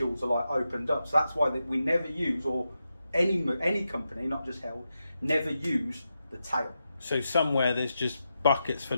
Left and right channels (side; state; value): both; inverted; correlation -0.88